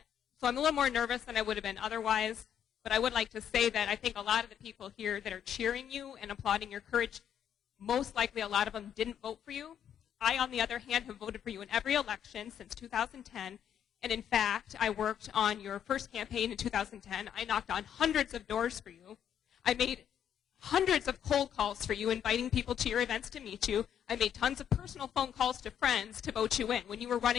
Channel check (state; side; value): quieter; right; 9.3 dB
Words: I'm a little more nervous than I would have been otherwise. But I would like to say that I think a lot of the people here that are cheering you and applauding your courage, most likely a lot of them didn't vote for you. I, on the other hand, have voted for you in every election since 2010. And in fact, I worked on your first campaign in 2010. I knocked on hundreds of doors for you. I made hundreds of cold calls for you, inviting people to your events to meet you. I made tons of personal phone calls to friends to vote you in when you were